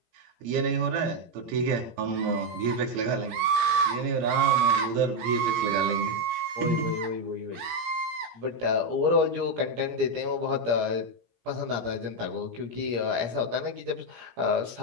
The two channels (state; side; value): late; left; 17 ms